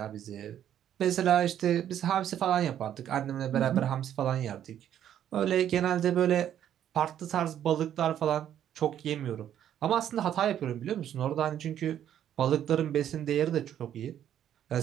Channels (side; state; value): left; quieter; 10.4 dB